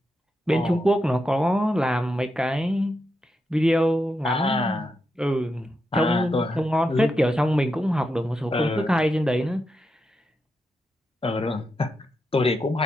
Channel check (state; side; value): normal; both; correlation 0.85